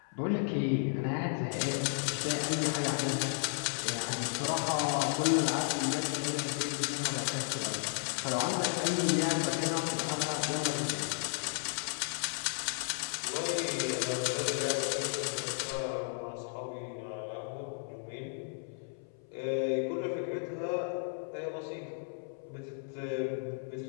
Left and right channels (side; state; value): right; silent; 55 dB below the other